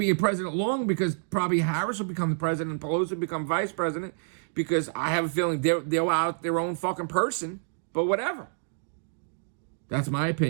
a president long because probably Harris will become the president and Pelosi will become vice president because I have a feeling they're out their own fucking person. But whatever. That's my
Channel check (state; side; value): silent; left; digital silence